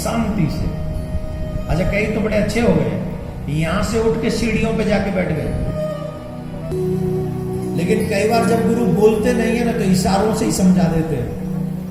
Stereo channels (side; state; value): both; identical; correlation 1.00